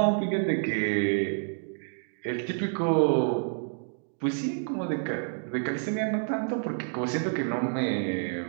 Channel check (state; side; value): silent; left; digital silence